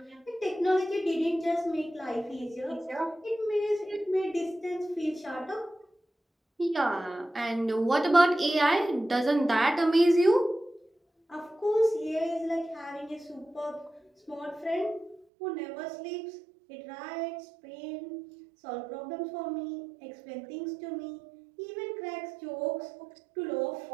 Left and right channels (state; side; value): drops out; left; at 15.2 s